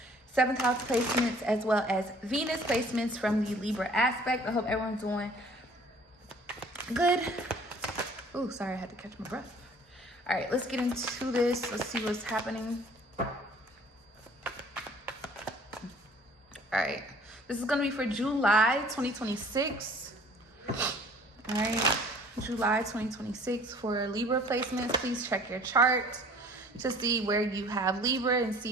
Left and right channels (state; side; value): normal; both; correlation 0.52